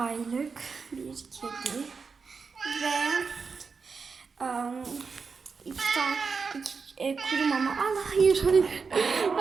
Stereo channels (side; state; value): left; quieter; 5.1 dB